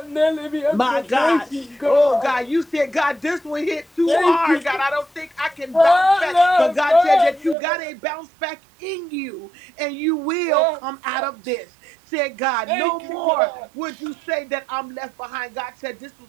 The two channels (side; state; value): left; drops out; at 7.6 s